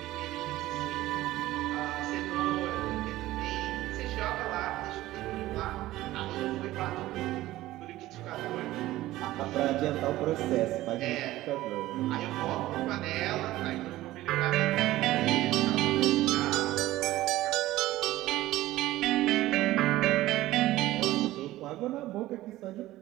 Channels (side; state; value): left; quieter; 16.2 dB